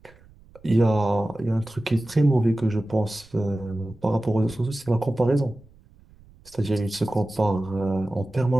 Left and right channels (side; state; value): right; noise; rumble, 26 dB below the sound